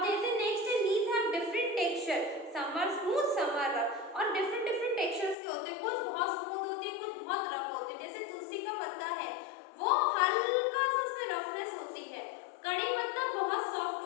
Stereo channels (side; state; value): right; drops out; at 5.4 s